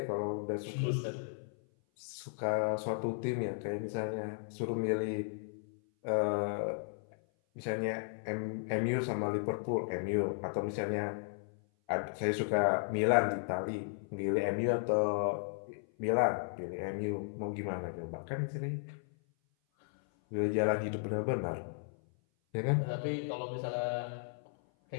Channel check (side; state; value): right; silent; 54 dB below the other